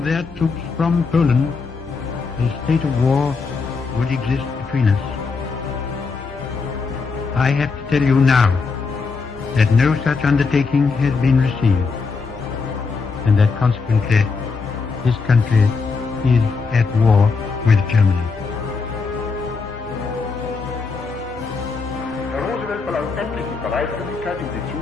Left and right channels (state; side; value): quieter; right; 4.7 dB